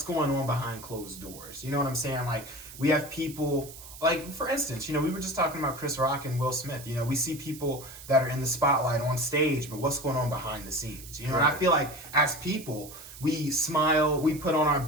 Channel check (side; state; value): right; noise; hiss, 15 dB below the sound